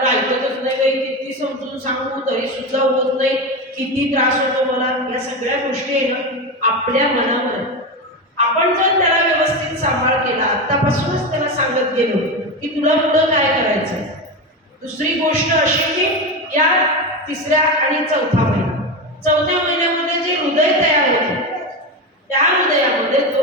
ऐकतच नाही, काही किती समजून सांगू तरी सुद्धा होत नाही, किती त्रास होतो मला. या सगळ्या गोष्टी आहे ना आपल्या मनावर. आपण जर त्याला व्यवस्थित सांभाळ केला, आतापासूनच त्याला सांगत गेलो की तुला पुढं काय करायचं. दुसरी गोष्ट अशी की या 3ऱ्या आणि 4था महिना, 4थ्या महिन्यामध्ये जे हृदय तयार होते, त्या हृदयामध्ये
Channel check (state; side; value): normal; both; correlation 0.18